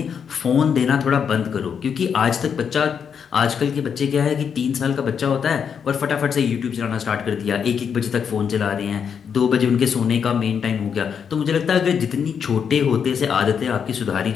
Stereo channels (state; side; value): quieter; right; 7.2 dB